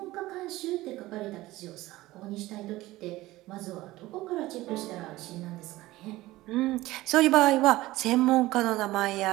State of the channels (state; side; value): quieter; left; 17.8 dB